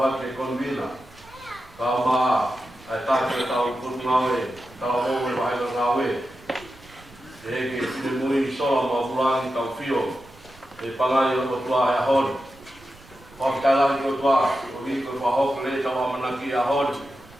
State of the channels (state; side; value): noise; right; rumble, 24 dB below the sound